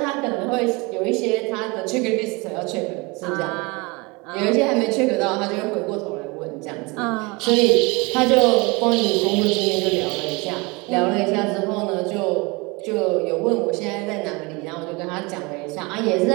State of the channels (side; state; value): left; quieter; 26.7 dB